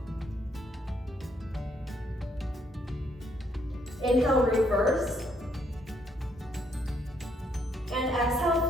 Inhale, reverse. And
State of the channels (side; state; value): both; normal; correlation 0.71